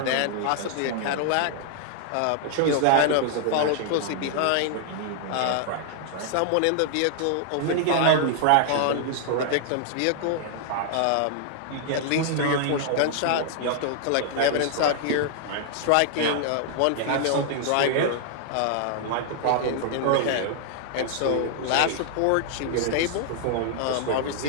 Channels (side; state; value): both; different; correlation -0.01